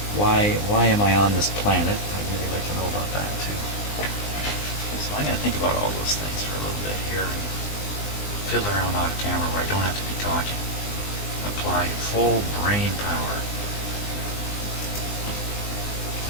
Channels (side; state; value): right; late; 20 ms